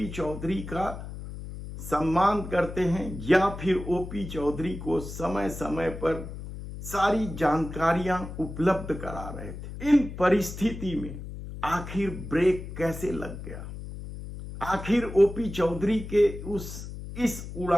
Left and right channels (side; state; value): left; noise; hum, 10 dB below the sound